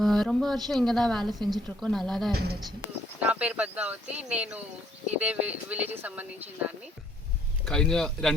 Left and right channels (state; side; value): normal; both; correlation 0.65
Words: ரொம்ப வருஷம் இங்கே தான் வேலை செஞ்சிட்ருக்கோம். நல்லா தான் இருந்துச்சு. నా పేరు పద్మావతి. నేను ఇదే విలేజ్కి సంబంధించిన దాన్ని. കഴിഞ്ഞ